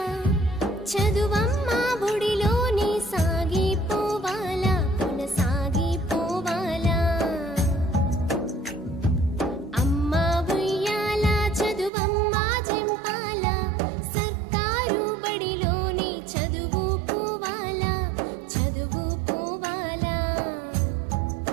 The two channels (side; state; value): left; drops out; at 11.9 s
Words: చదువమ్మా బుడిలోని సాగిపోవాలా, కొనసాగిపోవాలా. అమ్మా ఉయ్యాలా, చదువమ్మా జింపాలా. సర్కారు బడిలోని చదువుకోవాలా, చదువుకోవాలా.